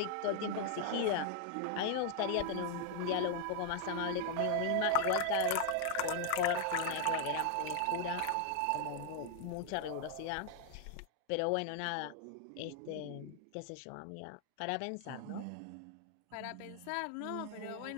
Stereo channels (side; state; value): both; different; correlation 0.00